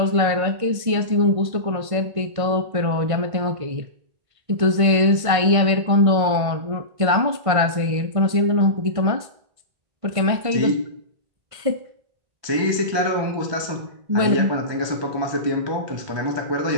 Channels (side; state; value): left; late; 1.5 ms